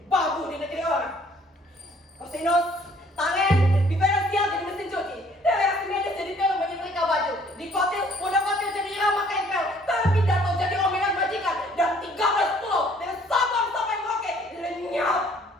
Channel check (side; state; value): both; normal; correlation 0.59